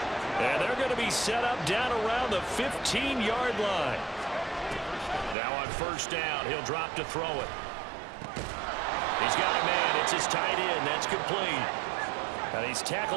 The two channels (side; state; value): left; drops out; at 5.4 s